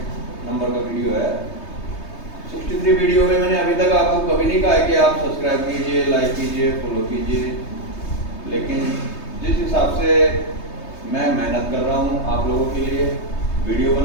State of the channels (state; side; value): late; right; 3.2 ms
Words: नंबर का वीडियो है। 63 वीडियो में मैंने अभी तक आपको कभी नहीं कहा है कि आप सब्सक्राइब कीजिए, लाइक कीजिए, फॉलो कीजिए, लेकिन जिस हिसाब से मैं मेहनत कर रहा हूँ आप लोगों के लिए, वीडियो